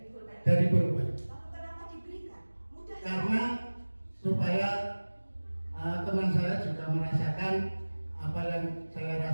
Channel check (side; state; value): both; inverted; correlation -1.00